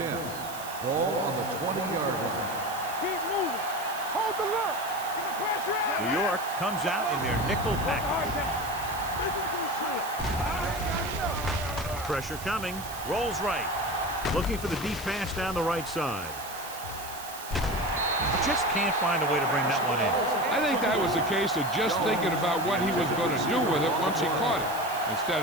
Ball on the 20-yard line. Keep moving. Hold the look. Get the pressure out. New York comes out in their nickel package. Pressure coming. Rolls right. Looking for the deep pass down the right side. Just can't find a way to bring that one in. I think that was a case of just thinking about what he was going to do with it once he caught it, instead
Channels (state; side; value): noise; right; hiss, 13 dB below the sound